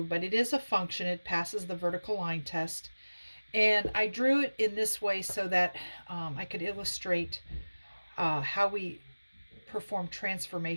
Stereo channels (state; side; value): inverted; both; correlation -1.00